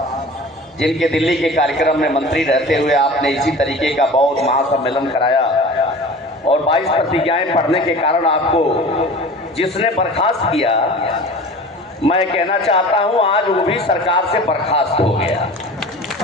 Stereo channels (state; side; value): normal; both; correlation 0.39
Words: जिनके दिल्ली के कार्यक्रम में मंत्री रहते हुए आपने इसी तरीके का बौद्ध महासम्मेलन कराया और 22 प्रतिज्ञाएं पढ़ने के कारण आपको जिसने बर्खास्त किया, मैं कहना चाहता हूं आज वो भी सरकार से बर्खास्त हो गया।